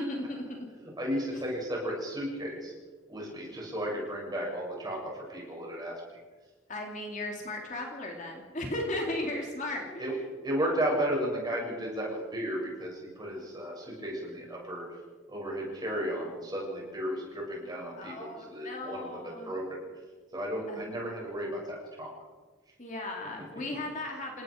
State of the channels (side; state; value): both; normal; correlation 0.42